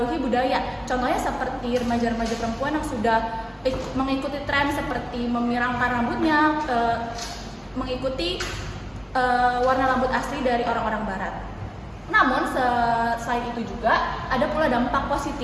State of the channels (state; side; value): identical; both; correlation 1.00